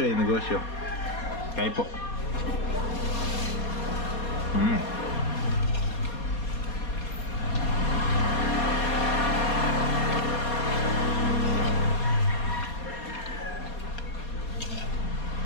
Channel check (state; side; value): late; right; 4.2 ms